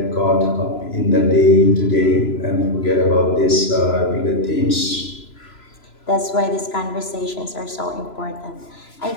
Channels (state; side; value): late; right; 3.0 ms